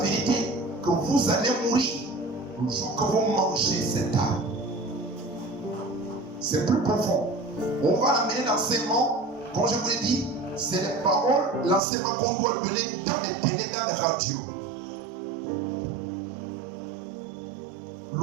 que vous allez mourir le jour que vous mangez cet arbre. C'est plus profond. On va amener l'enseignement, comme je vous l'ai dit, c'est les paroles, l'enseignement qu'on doit donner dans les télé, dans les radios. Le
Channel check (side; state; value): left; drops out; at 11.8 s